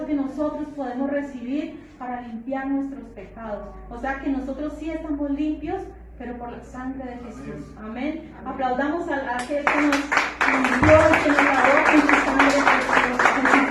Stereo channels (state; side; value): identical; both; correlation 1.00